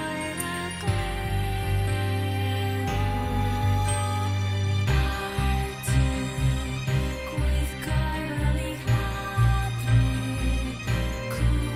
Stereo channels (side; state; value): both; identical; correlation 1.00